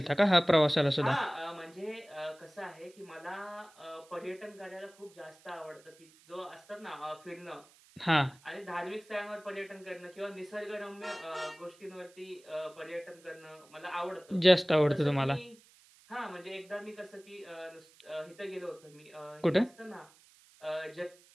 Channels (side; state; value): right; noise; hiss, 27 dB below the sound